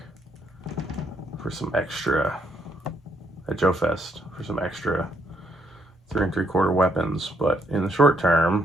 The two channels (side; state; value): both; normal; correlation 0.73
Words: for some extra at Joe Fest for some extra 3 3/4 weapons. But in the short